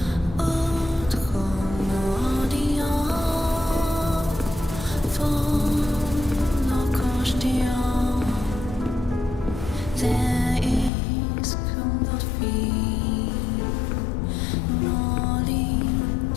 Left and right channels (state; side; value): drops out; right; at 10.9 s